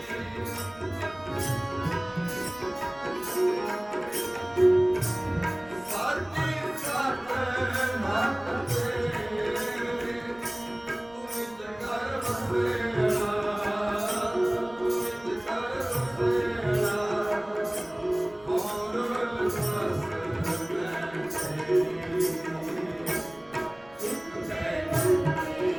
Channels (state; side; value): noise; right; rumble, 27 dB below the sound